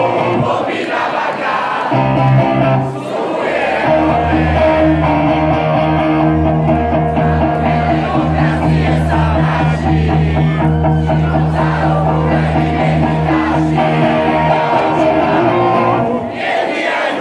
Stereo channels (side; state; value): both; identical; correlation 1.00